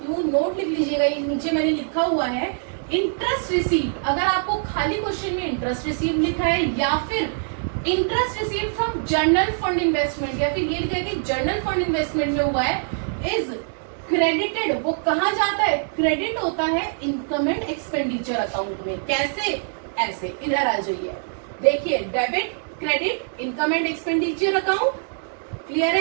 हूँ। नोट लिख लीजिएगा, ये नीचे मैंने लिखा हुआ है इंटरेस्ट रिसीव। अगर आपको खाली क्वेश्चन में इंटरेस्ट रिसीव लिखा है या फिर interest receive from journal fund investment या फिर ये लिखा है कि जर्नल फंड इन्वेस्टमेंट में हुआ है, इज क्रेडिटेड, वो कहाँ जाता है, क्रेडिट होता है इनकम एंड एक्सपेंडिचर अकाउंट में। कैसे, ऐसे इधर आ जाइए, देखिए debit credit income and expenditure account, clear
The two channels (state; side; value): silent; left; 63 dB below the other